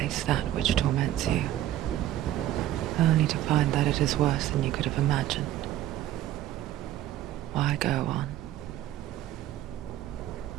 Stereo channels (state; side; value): quieter; left; 13.3 dB